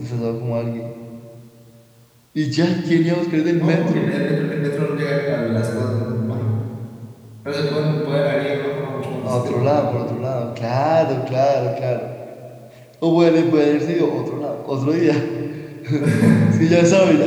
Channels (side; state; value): both; identical; correlation 1.00